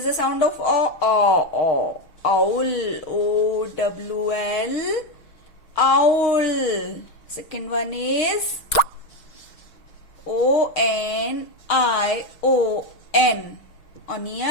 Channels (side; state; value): right; late; 6.4 ms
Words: the sound of O? Owl, O-W-L, owl. Second one is O-N-I-O-N,